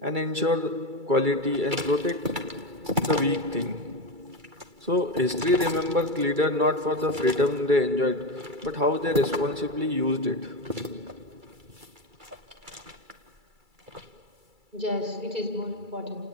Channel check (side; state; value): left; late; 2.3 ms